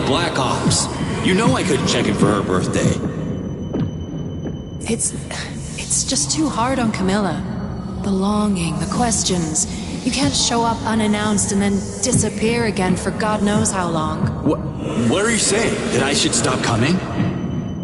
Black Ops. You know I couldn't check in for her birthday. It's just too hard on Camilla. The longing, the questions. You can't show up unannounced and then disappear again for God knows how long. What are you saying? That I should stop coming?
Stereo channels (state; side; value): identical; both; correlation 1.00